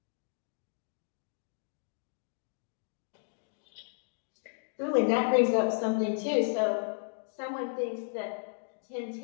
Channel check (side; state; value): right; silent; digital silence